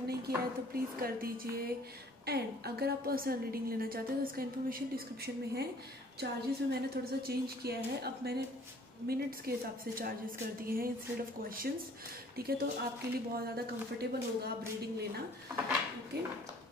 नहीं किया है तो प्लीज़ कर दीजिए। एंड अगर आप पर्सनल रीडिंग लेना चाहते हैं तो इसका इन्फॉर्मेशन डिस्क्रिप्शन में है। चार्जेस में मैंने थोड़ा सा चेंज किया है, अब मैंने मिनट्स के हिसाब से चार्जेस कर दिए हैं इंस्टेड ऑफ क्वेश्चंस। ठीक है, तो आपके लिए बहुत ज़्यादा कंफर्टेबल होगा आप रीडिंग लेना। ओके,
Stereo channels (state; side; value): normal; both; correlation 0.55